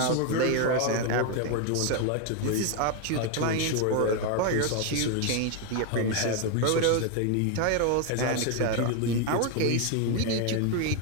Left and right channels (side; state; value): both; different; correlation 0.01